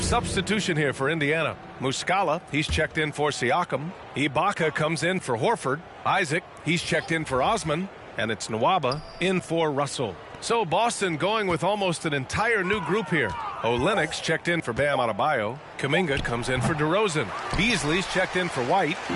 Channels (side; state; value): both; identical; correlation 1.00